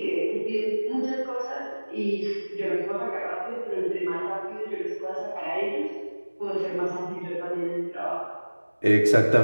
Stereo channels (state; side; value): inverted; both; correlation -1.00